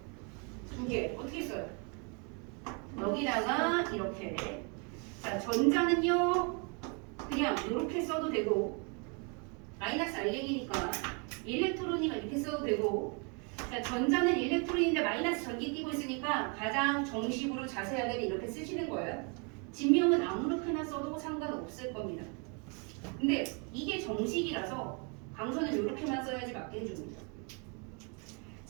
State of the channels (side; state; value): left; quieter; 35.4 dB